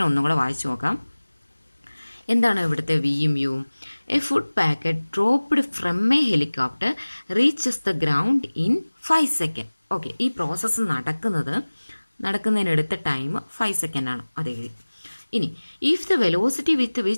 ഒന്നും കൂടെ വായിച്ചു നോക്കാം. എന്താണ് ഇവിടുത്തെ വിയും യുവും? A food packet dropped from a helicopter reaches the ground in 5 seconds. Okay, ഈ പ്രോസസ്സ് നടക്കുന്നതിനെടുത്ത ടൈം 5 seconds ആണ്, അത് എഴുതി. ഇനി if the velocity with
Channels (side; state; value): both; inverted; correlation -1.00